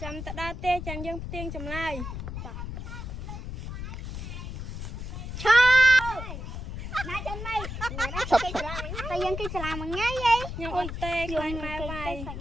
ចាំទៅដល់ទេចាំយើងផ្ទៀងចម្លើយឈប់ណាចាំម៉េចតែយើងគេសាលាមួយថ្ងៃហីខ្ញុំអត់ទេខ្លាញ់ម៉ែវាយ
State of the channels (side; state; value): left; noise; rumble, 7 dB below the sound